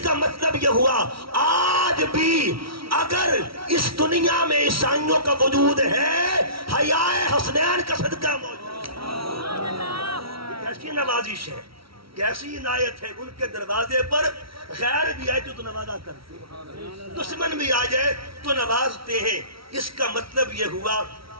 کا مطلب یہ ہوا آج بھی اگر اس دنیا میں عیسائیوں کا وجود ہے، حیاء حسنین کا صدقہ موجود ہے۔ کیسی نوازش ہے، کیسی عنایت ہے، ان کے دروازے پر غیر بھی آئے تو نوازا کرتے ہیں، دشمن بھی آ جائے تو نوازتے ہیں۔ اس کا مطلب یہ ہوا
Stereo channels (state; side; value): late; left; 0.75 ms